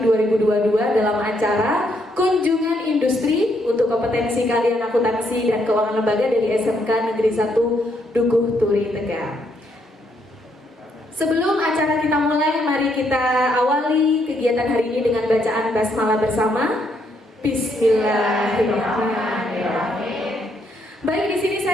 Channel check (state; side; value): normal; both; correlation 0.74